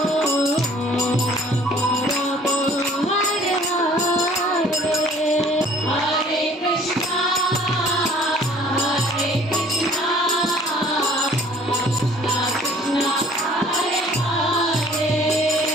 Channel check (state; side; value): normal; both; correlation 0.54